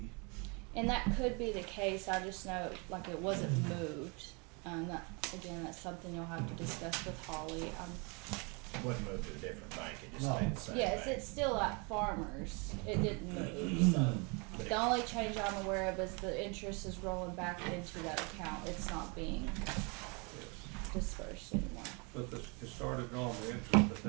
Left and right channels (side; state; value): left; quieter; 31.7 dB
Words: And that could be the case. I just know, like, it wasn't moved. That's something you'll have to discuss with Holly. Wouldn't move to a different bank, it just No. stayed the same Yes, bank. it's still at Farmers. It didn't move, so. But The only change I'm aware of is the interest is rolling back into that account. It's not being Yes. dispersed anymore. But it started on the interest